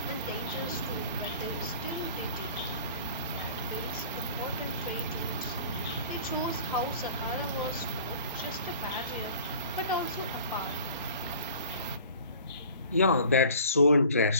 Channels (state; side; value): inverted; both; correlation -0.46